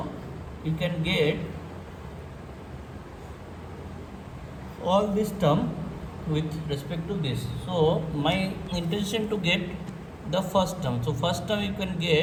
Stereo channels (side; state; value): both; identical; correlation 1.00